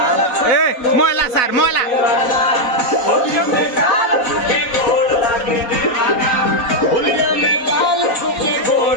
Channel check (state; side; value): late; right; 4.1 ms